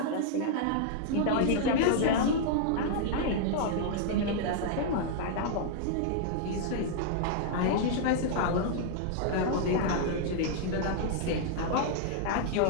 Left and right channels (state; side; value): different; both; correlation -0.01